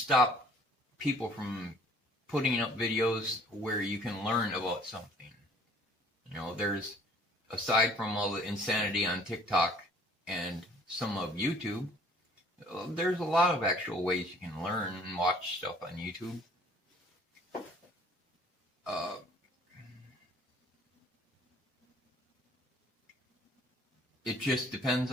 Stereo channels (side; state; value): both; normal; correlation 0.55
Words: people from putting up videos where you can learn about something. There's, aside from all the insanity on TikTok and some of YouTube, there's a lot of actual ways you can learn and watch stuff on YouTube. It just depends